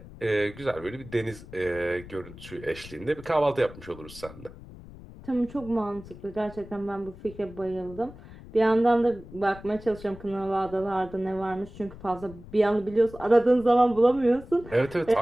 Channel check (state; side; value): noise; left; rumble, 17 dB below the sound